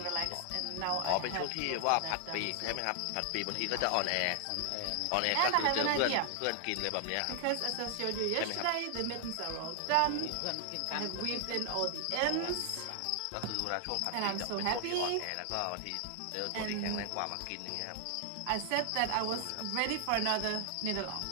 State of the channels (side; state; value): both; different; correlation 0.00